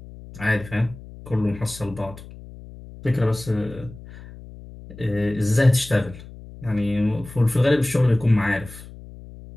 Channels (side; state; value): left; noise; hum, 17 dB below the sound